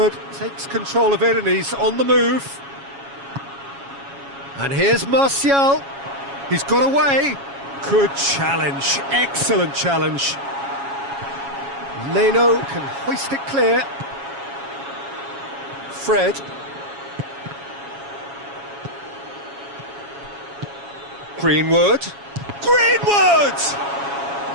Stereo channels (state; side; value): late; left; 7.2 ms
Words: takes control of it and he's on the move. And here's Martial. He's got away. Good challenge. Excellent challenge. Leno can hoist it clear. Fred. Greenwood. Greenwood!